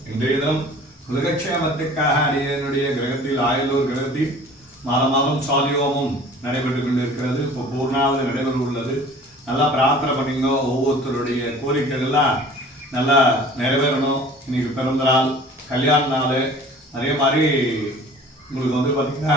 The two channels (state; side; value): normal; both; correlation 0.46